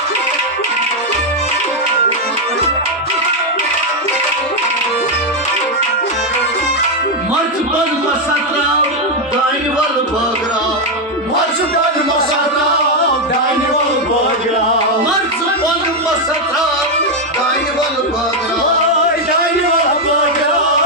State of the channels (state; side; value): normal; both; correlation 0.03